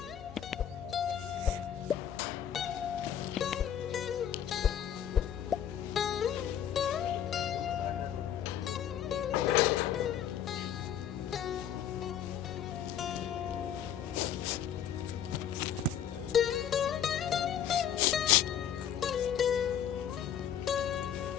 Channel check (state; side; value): quieter; right; 9.4 dB